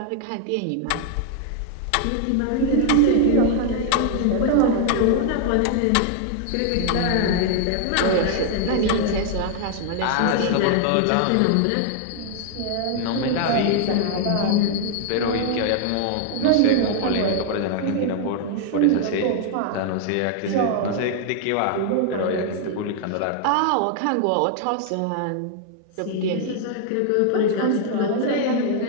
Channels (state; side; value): different; both; correlation 0.00